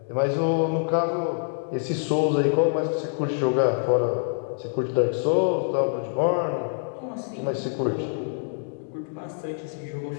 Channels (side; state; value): right; silent; 61 dB below the other